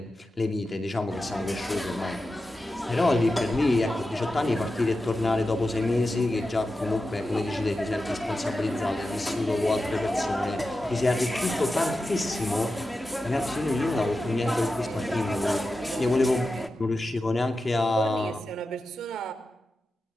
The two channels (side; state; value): both; normal; correlation 0.92